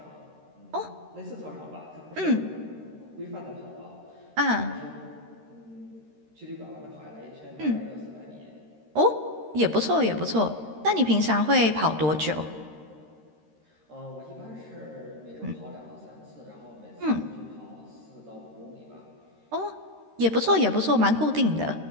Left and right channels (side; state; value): left; late; 13 ms